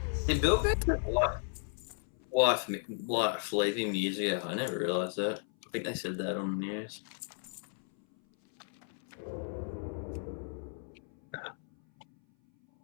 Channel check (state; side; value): silent; right; 55 dB below the other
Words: Did Bill get wife leaving years ago? I never realised that. I think they said that on the news.